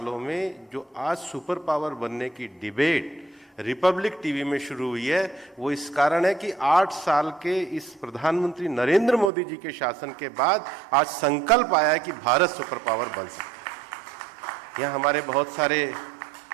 में जो आज सुपर पावर बनने की डिबेट रिपब्लिक टीवी में शुरू हुई है, वो इस कारण है कि 8 साल के इस प्रधानमंत्री नरेंद्र मोदी जी के शासन के बाद आज संकल्प आया है कि भारत सुपर पावर बन सकता है। यहाँ हमारे बहुत सारे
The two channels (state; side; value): drops out; left; at 9.3 s